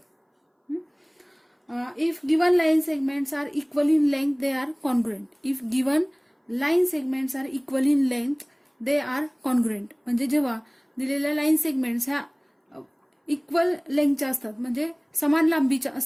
If given line segments are equal in length, they are congruent. If given line segments are equal in length, they are congruent. म्हणजे जेव्हा दिलेल्या लाईन सेगमेंट्स ह्या इक्वल लेंथच्या असतात म्हणजे समान लांबीच्या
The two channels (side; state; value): both; identical; correlation 1.00